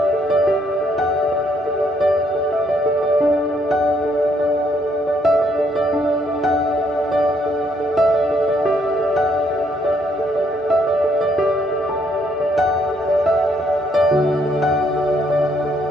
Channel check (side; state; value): both; normal; correlation 0.70